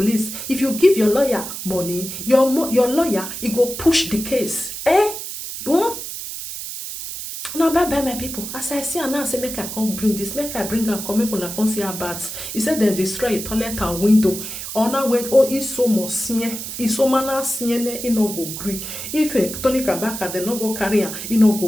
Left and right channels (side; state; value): right; noise; hiss, 8 dB below the sound